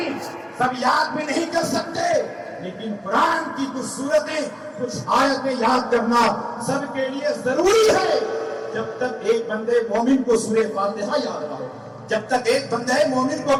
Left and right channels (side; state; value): both; identical; correlation 1.00